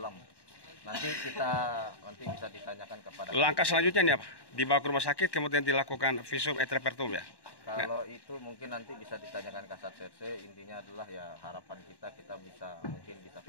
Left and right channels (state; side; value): late; right; 1.1 ms